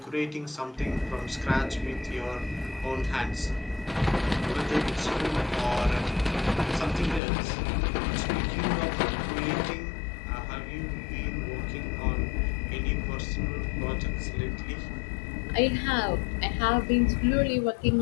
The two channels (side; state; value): right; drops out; at 7.2 s